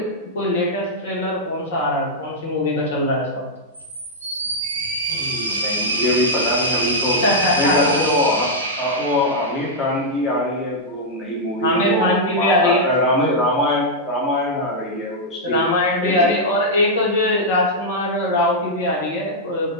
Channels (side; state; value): both; normal; correlation -0.06